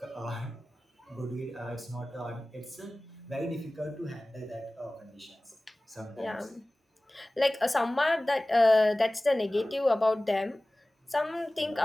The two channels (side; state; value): both; normal; correlation 0.98